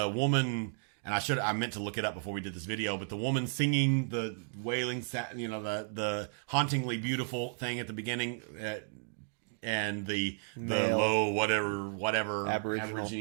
And I meant to look it up before we did this video, but the woman singing the wailing, the hauntingly beautiful thing at the beginning. And the low whatever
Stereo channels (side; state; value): left; silent; digital silence